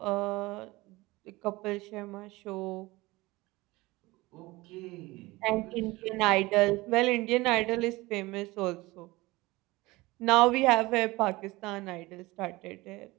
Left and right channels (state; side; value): quieter; left; 20.9 dB